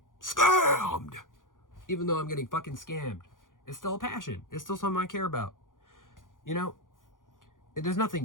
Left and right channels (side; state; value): right; late; 0.89 ms